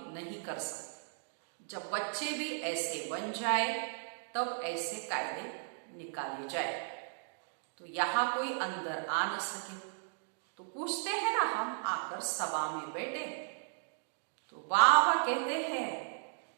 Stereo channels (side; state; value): left; silent; digital silence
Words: नहीं कर सकते। जब बच्चे भी ऐसे बन जाए तब ऐसे कायदे निकाले जाए। तो यहाँ कोई अंदर आ न सके। तो पूछते हैं ना, हम आकर सभा में बैठे तो बाबा कहते हैं